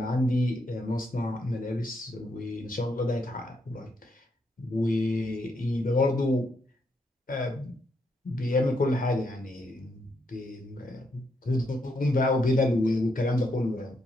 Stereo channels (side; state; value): both; normal; correlation 0.78